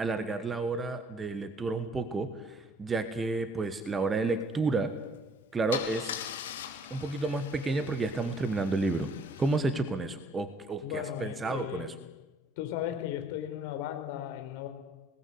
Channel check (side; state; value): both; normal; correlation 0.59